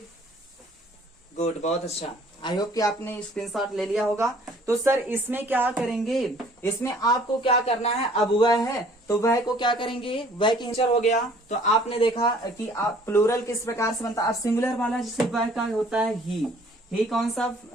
गुड, बहुत अच्छा। आई होप कि आपने स्क्रीनशॉट ले लिया होगा। तो सर इसमें क्या करेंगे, इसमें आपको क्या करना है, अब वह है तो वह को क्या करेंगे, वह की इंचर हो गया। तो आपने देखा कि आप प्लूरल किस प्रकार से बनता है। अब सिंगुलर वाला जैसे वह का होता है ही कौन सा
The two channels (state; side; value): normal; both; correlation 0.56